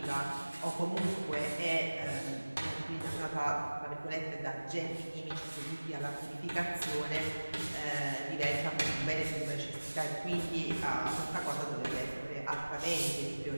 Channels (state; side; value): inverted; both; correlation -1.00